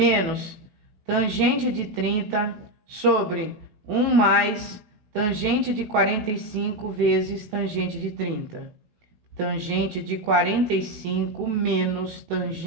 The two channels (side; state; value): left; late; 19 ms